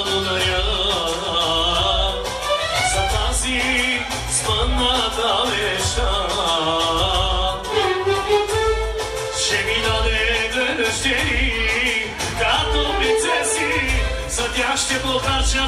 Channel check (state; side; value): identical; both; correlation 1.00